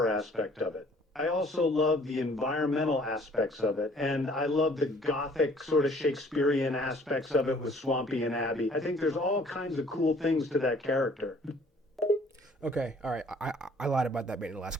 aspect of it. I also love the environmental aspects of it, and I love the gothic sort of Shakespearean aspects of it with Swampy and Abby. I think there's all kinds of cool things to that character. Okay, all right. I lied about that being the last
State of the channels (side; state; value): both; normal; correlation 0.57